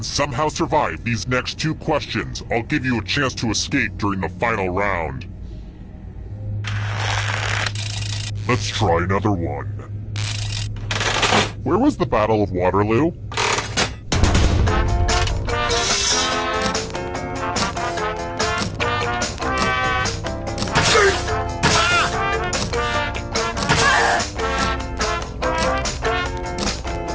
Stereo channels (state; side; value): identical; both; correlation 1.00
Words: somehow survive these next two questions, I'll give you a chance to escape during the final round. Let's try another one. Where was the Battle of Waterloo?